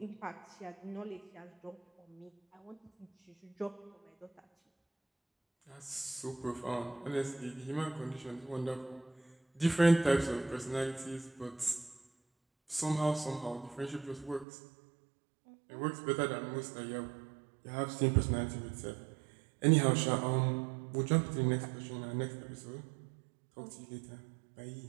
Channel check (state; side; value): drops out; left; at 14.5 s